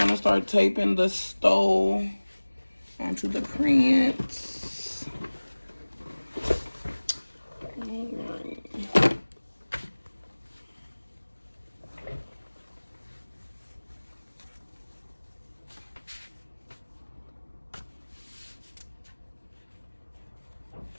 start taping the stove onto the prints. All right.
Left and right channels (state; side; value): inverted; both; correlation -1.00